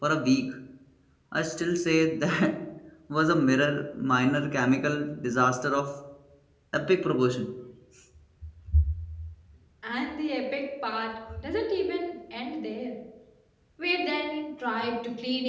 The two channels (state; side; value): identical; both; correlation 1.00